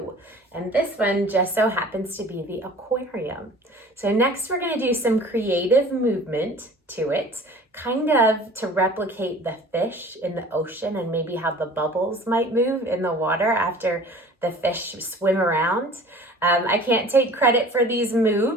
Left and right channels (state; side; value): normal; both; correlation 0.45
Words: And this one just so happens to be the aquarium. So next we're going to do some creative movement to it, kind of to replicate the fish in the ocean and maybe how the bubbles might move in the water after the fish swim around. I can't take credit for these